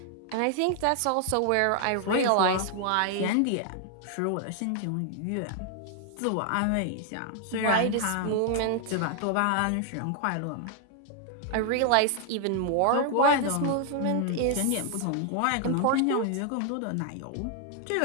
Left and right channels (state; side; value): different; both; correlation 0.00